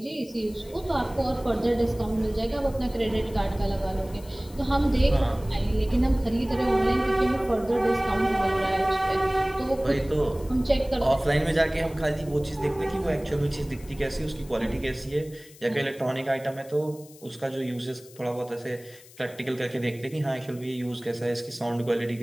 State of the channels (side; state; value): left; noise; hiss, 22 dB below the sound